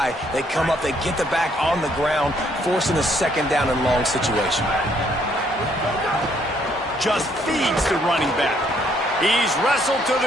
They come up, they get the back on the ground, forcing a 2nd down and long situation. Just feeds the running back. He's wrestled to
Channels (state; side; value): normal; both; correlation 0.68